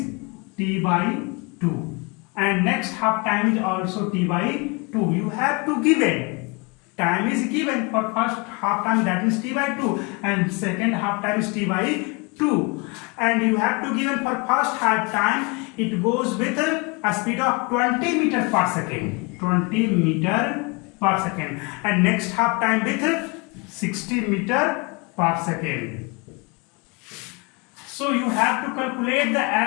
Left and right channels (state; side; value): quieter; right; 29.4 dB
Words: t by 2, and next half time is also t by 2. You have to give it. Time is given for first half time, that is t by 2, and second half time is t by 2. And you have to give it for first half time. It goes with a speed of 20 meter per second. 20 meter per second. And next half time with 60 meter per second. So you have to calculate the